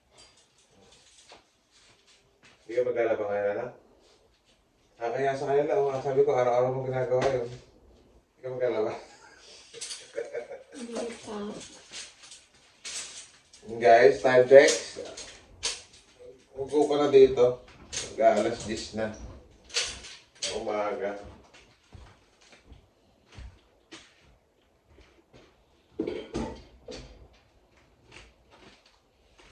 Hindi ka maglalaba ngayon na? Kaya sa kanila, sabi ko, araw-araw mo ginagawa yun. Hindi ka maglalaba. Hindi pa. Guys, time check. Ugo ko na dito. Mag-aalas 10 na. Umaga.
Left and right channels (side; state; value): both; identical; correlation 1.00